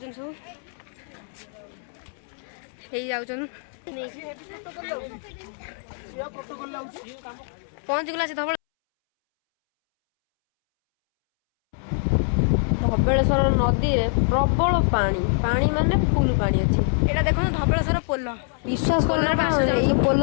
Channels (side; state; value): right; silent; 62 dB below the other